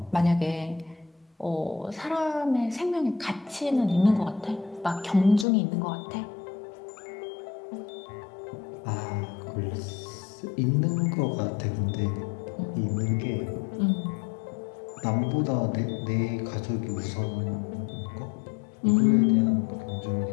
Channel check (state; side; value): drops out; right; at 5.5 s